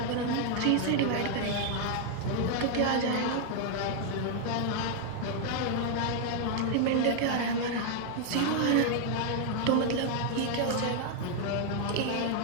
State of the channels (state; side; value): different; both; correlation 0.00